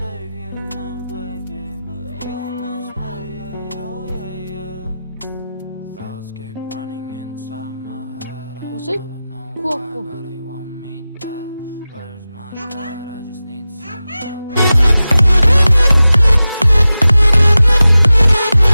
Осы кулак бұл.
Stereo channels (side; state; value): both; inverted; correlation -0.95